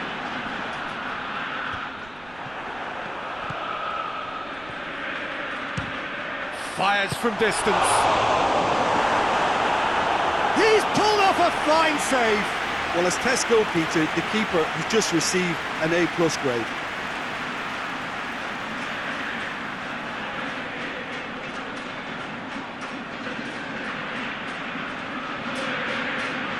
Fires from distance. He's pulled off a fine save. Well, as test goal, Peter, the keeper has just received an A+ grade.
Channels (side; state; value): right; noise; rumble, 22 dB below the sound